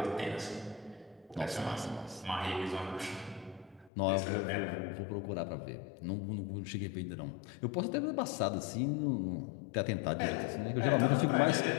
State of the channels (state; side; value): drops out; right; at 3.9 s